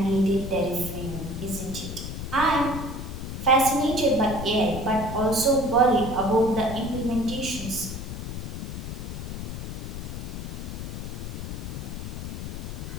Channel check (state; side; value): noise; left; rumble, 6 dB below the sound